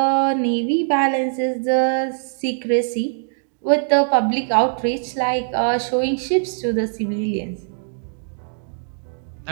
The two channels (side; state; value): left; silent; digital silence